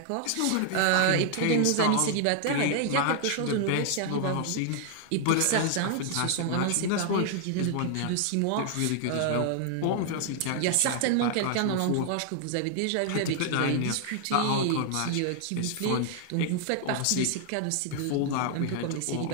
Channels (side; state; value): both; different; correlation 0.00